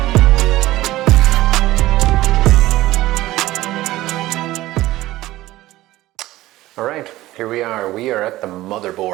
Alright, here we are. We are at the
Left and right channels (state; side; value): quieter; left; 16.7 dB